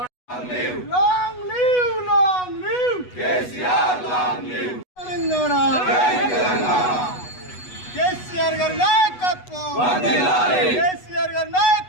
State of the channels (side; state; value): right; late; 8.1 ms